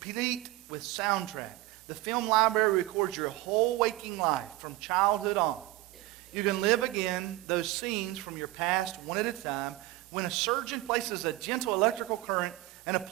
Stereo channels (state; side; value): quieter; left; 17.8 dB